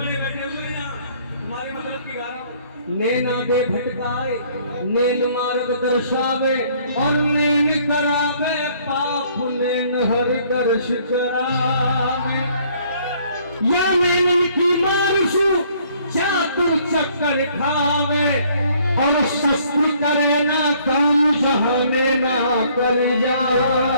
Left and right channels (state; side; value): inverted; both; correlation -0.61